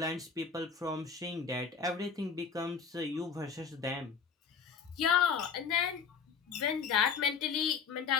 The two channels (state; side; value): quieter; right; 6.1 dB